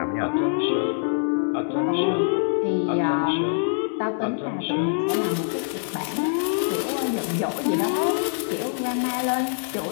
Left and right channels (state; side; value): silent; right; 62 dB below the other